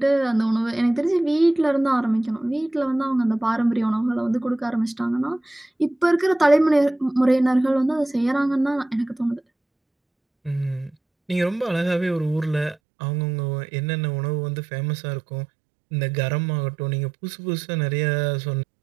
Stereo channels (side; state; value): left; drops out; at 12.8 s